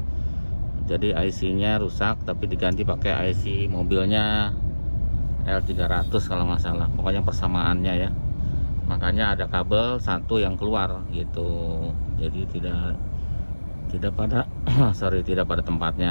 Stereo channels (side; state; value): both; inverted; correlation -1.00